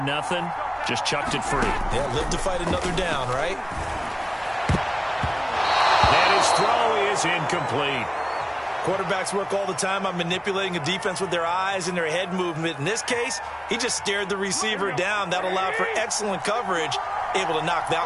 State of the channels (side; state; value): both; identical; correlation 1.00